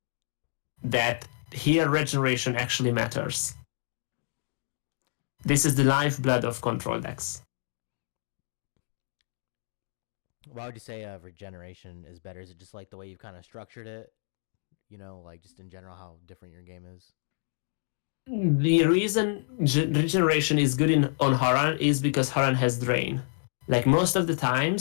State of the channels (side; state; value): right; silent; digital silence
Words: that here Regeneration actually matters. This is the lifeblood of control decks. Why would you say regeneration is better? Is it just like the way you've kind of structured it? You know, like just in general, how different your game is? The reason regeneration is good on Haran is because Haran has drain. Like most of the